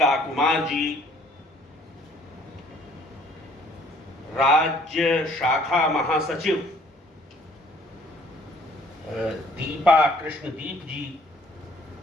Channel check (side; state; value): both; normal; correlation 0.59